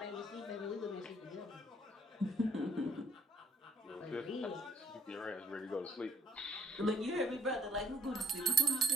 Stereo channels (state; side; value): normal; both; correlation 0.62